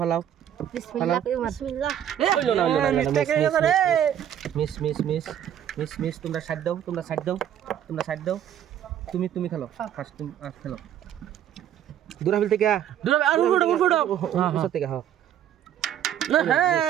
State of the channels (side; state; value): left; quieter; 10.3 dB